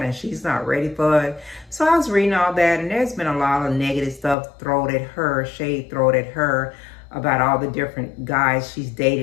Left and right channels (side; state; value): right; drops out; at 4.4 s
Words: and she's not ready for it. So I was reading all that, and there's been a lot of negative stuff thrown at her, shade thrown at her, about all the different guys she's